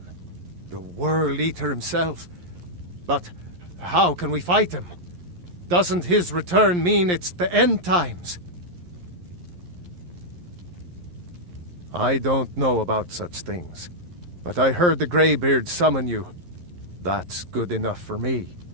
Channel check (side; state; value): left; late; 11 ms